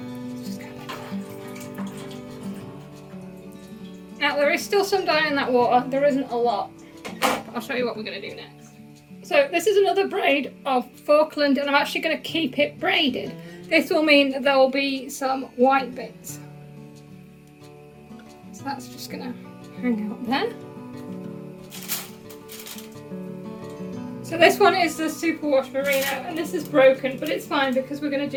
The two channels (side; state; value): both; identical; correlation 1.00